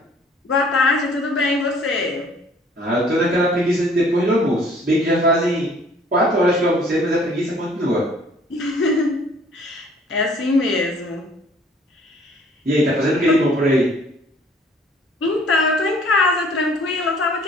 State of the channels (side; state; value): both; normal; correlation 0.56